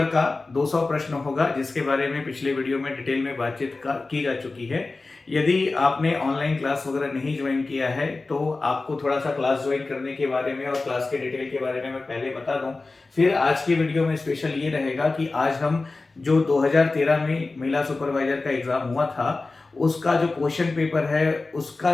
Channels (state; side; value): quieter; right; 3.5 dB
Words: का 200 प्रश्न होगा, जिसके बारे में पिछले वीडियो में डिटेल में बातचीत की जा चुकी है। यदि आपने ऑनलाइन क्लास वगैरह नहीं ज्वाइन किया है तो आपको थोड़ा सा क्लास ज्वाइन करने के बारे में और क्लास के डिटेल के बारे में मैं पहले बता दूं। फिर आज की वीडियो में स्पेशल ये रहेगा कि आज हम जो 2013 में महिला सुपरवाइजर का एग्जाम हुआ था, उसका जो क्वेश्चन पेपर है, उसका